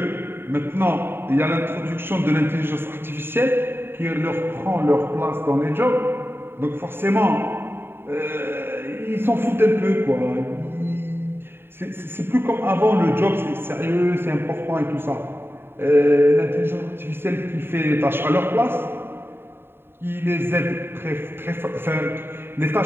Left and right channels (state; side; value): late; left; 0.11 ms